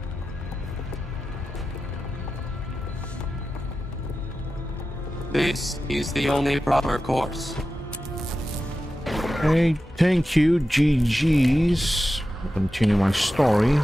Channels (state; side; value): normal; both; correlation 0.92